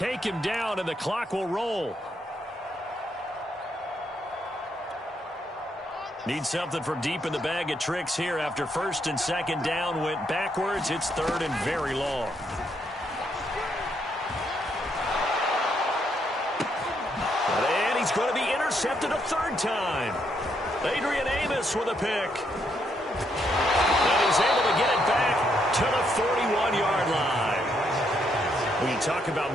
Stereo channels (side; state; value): both; normal; correlation 0.75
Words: him down, and the clock will roll. Need something from deep in the bag of tricks here after 1st and 2nd down went backwards. It's 3rd and very long. And he's going to be intercepted a 3rd time. Adrian Amos with a pick. And he's able to get it back to the 41-yard line. When you talk about